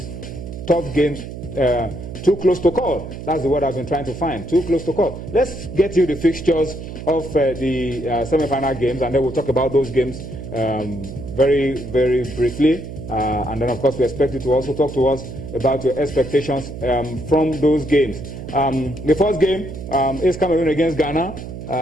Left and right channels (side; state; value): right; noise; hum, 10 dB below the sound